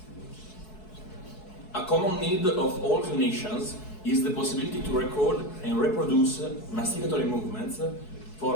A common need of all clinicians is the possibility to record and reproduce masticatory movements for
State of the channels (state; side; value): late; right; 4.7 ms